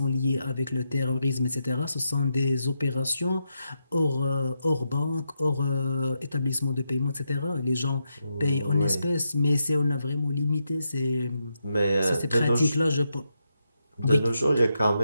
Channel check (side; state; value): both; inverted; correlation -0.84